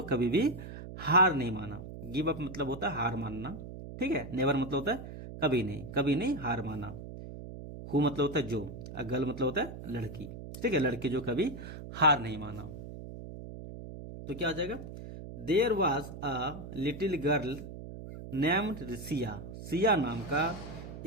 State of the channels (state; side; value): noise; right; hum, 11 dB below the sound